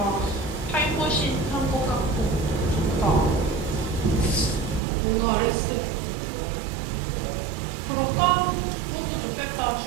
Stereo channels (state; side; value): drops out; left; at 4.8 s